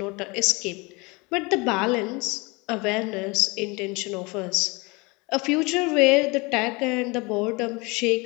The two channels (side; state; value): right; quieter; 26.6 dB